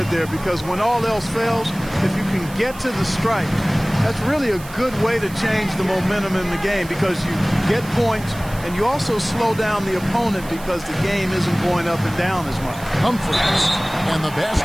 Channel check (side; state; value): right; noise; hiss, 18 dB below the sound